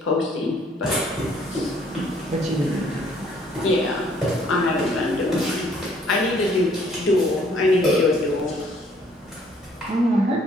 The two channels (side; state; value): both; normal; correlation 0.62